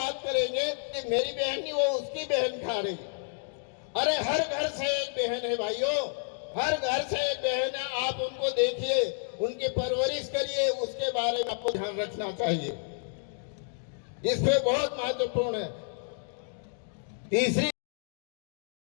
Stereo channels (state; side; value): silent; right; 58 dB below the other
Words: करेंगे कि मेरी बहन नहीं, वो उसकी बहन खा रही। अरे हर घर से एक बहन है भाइयों, हर घर से एक बहन है। आप उनको देखिए, उनकी परवरिश करिए, उसके बारे में आपको ध्यान रखना चाहिए। इस पे बहुत महत्वपूर्ण है। तीसरी